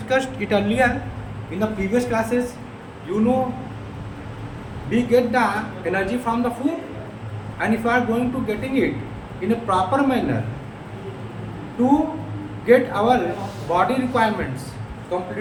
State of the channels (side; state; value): both; identical; correlation 1.00